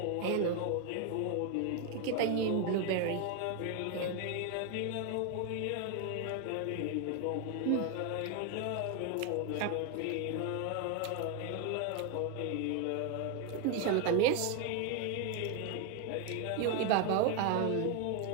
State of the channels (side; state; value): both; different; correlation 0.01